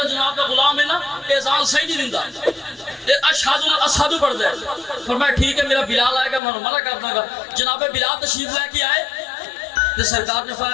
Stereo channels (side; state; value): right; drops out; at 6.4 s